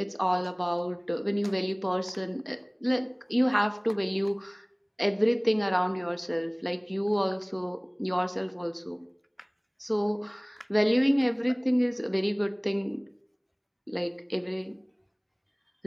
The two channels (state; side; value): identical; both; correlation 1.00